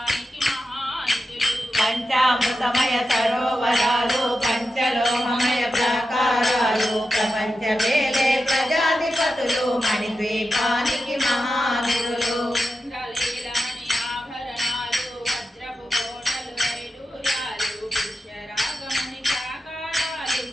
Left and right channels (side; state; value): both; normal; correlation 0.90